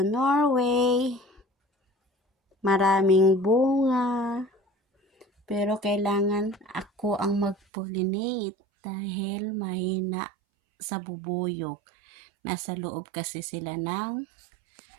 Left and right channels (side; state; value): left; drops out; at 7.6 s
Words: Maraming bunga. Pero kailangan ako ang mag-pollinate dahil mahina sa bubuyog. Nasa loob kasi sila ng